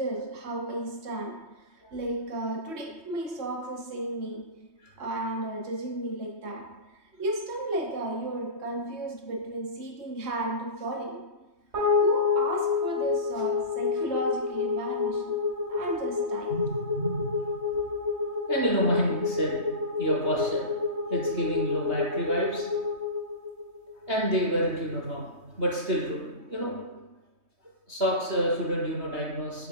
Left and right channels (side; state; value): left; late; 3.2 ms